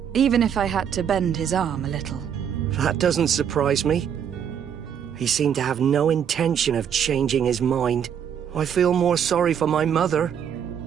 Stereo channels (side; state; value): left; quieter; 8.4 dB